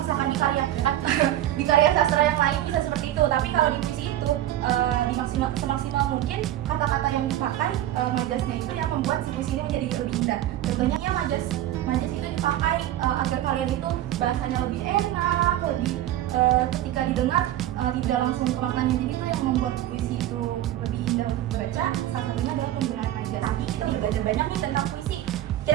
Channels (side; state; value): left; quieter; 13.1 dB